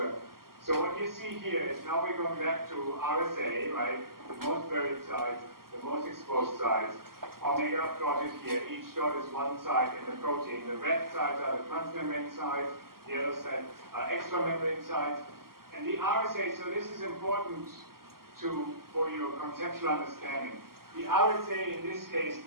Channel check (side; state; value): left; late; 0.92 ms